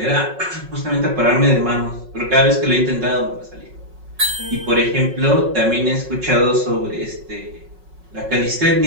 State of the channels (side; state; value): left; late; 5.4 ms